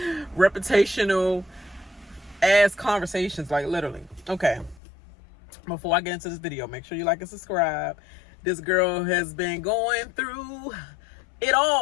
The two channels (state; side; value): drops out; right; at 4.8 s